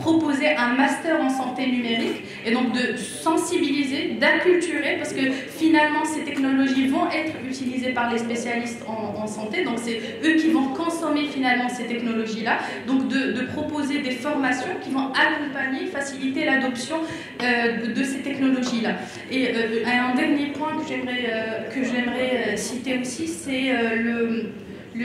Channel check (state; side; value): identical; both; correlation 1.00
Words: un master en santé numérique et donc de sensibiliser, d'acculturer, parce que finalement ces technologies vont être utilisées par les spécialistes en santé, donc c'est eux qui vont consommer finalement ces technologies-là, donc de proposer des formations qui vont accompagner, faciliter l'adoption de ces technologies-là. Et un dernier point que j'aimerais citer aussi, c'est